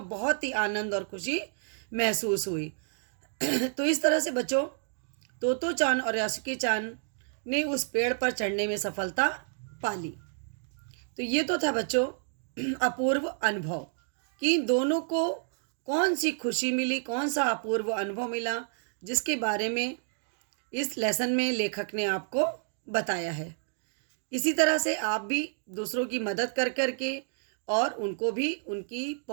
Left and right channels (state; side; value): silent; left; digital silence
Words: बहुत ही आनंद और खुशी महसूस हुई। तो इस तरह से बच्चों तोतो चान और यासुकी चान ने उस पेड़ पर चढ़ने में सफलता पाली। तो ये तो था बच्चों अपूर्व अनुभव कि दोनों को कौन सी खुशी मिली, कौन सा अपूर्व अनुभव मिला, जिसके बारे में इस लेसन में लेखक ने आपको बताया है। इसी तरह से आप भी दूसरों की मदद कर करके और उनको भी